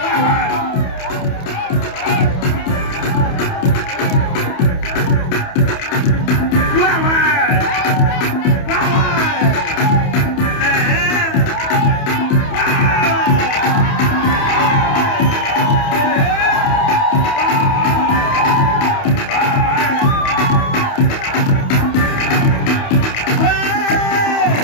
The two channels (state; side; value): late; right; 28 ms